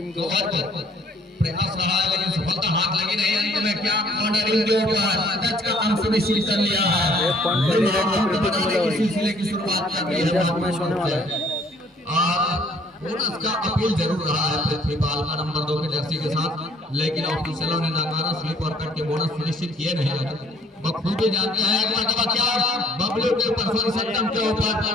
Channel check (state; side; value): normal; both; correlation 0.59